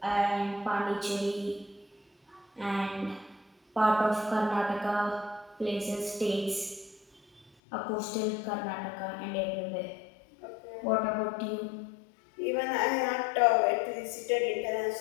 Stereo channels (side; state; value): right; drops out; at 7.5 s